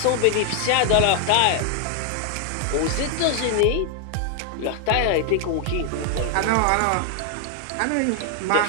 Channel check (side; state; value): both; different; correlation 0.00